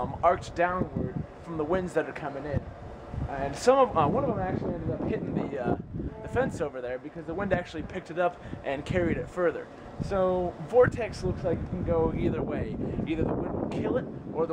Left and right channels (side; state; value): both; identical; correlation 1.00